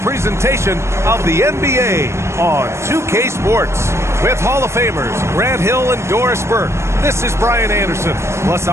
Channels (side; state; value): left; late; 0.13 ms